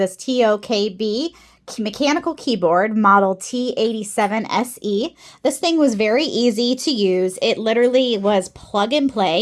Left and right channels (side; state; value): both; identical; correlation 1.00